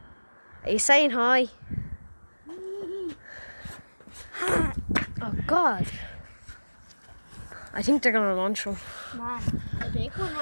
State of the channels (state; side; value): inverted; both; correlation -1.00